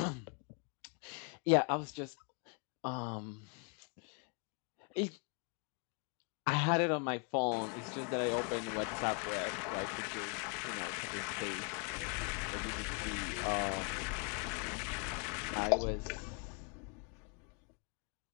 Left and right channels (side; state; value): right; quieter; 36.5 dB